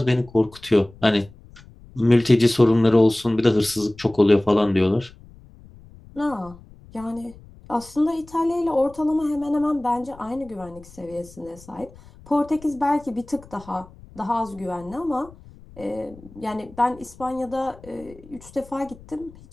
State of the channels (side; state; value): left; noise; rumble, 22 dB below the sound